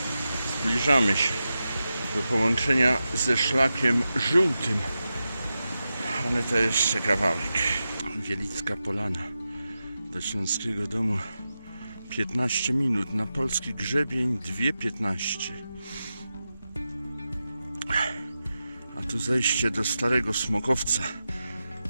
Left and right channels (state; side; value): inverted; both; correlation -0.91